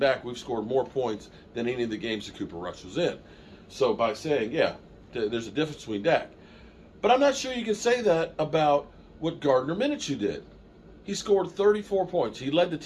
we've scored more points than any of the games that Cooper Rush was in. So by saying, there's a difference between Dak. But I'm not sure you can say that about what Gardner Minshew did. He scored 34 points. He led the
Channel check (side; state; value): both; identical; correlation 1.00